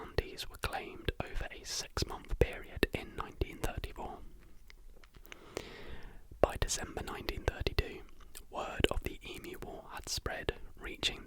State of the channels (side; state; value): both; identical; correlation 1.00